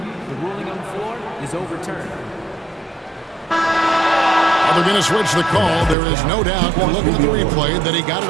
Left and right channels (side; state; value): left; drops out; at 6.0 s